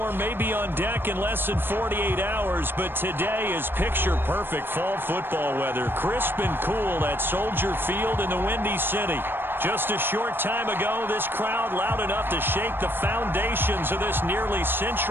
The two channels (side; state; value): left; late; 0.10 ms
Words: may be on deck in less than 48 hours, but today is picture-perfect fall football weather. Crisp and cool at Soldier Field in the Windy City. Just a short time ago, this crowd loud enough to shake the foundations of this nearly